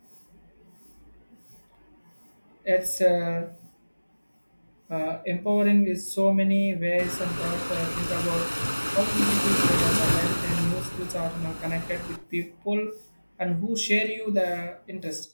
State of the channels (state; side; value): inverted; both; correlation -1.00